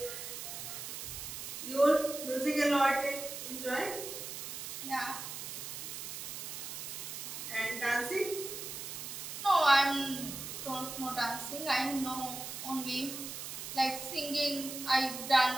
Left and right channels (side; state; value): right; noise; hiss, 7 dB below the sound